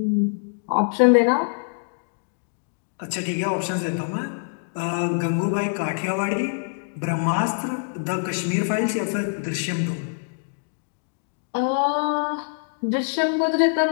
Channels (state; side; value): silent; right; digital silence